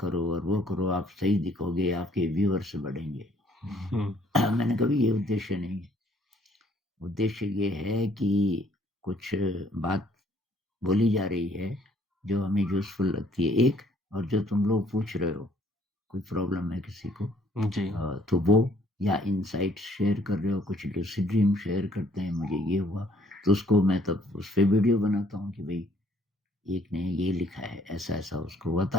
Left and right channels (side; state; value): both; normal; correlation 0.62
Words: करो और वो करो, आप सही दिखोगे, आपके व्यूअर्स बढ़ेंगे। हुँ, मैंने कहा ये उद्देश्य नहीं है। उद्देश्य ये है कि कुछ बात बोली जा रही है जो हमें यूज़फुल लगती है एक, और जो तुम लोग पूछ रहे हो, कोई प्रॉब्लम है किसी को, जी, तो वो, या इनसाइट्स शेयर कर रहे हो, कुछ लूसिड ड्रीम शेयर करते हैं, मुझे ये हुआ, तो उसको मैं तब उस पे वीडियो बनाता हूँ कि भई एक ने ये लिखा है, ऐसा-ऐसा उसको हुआ,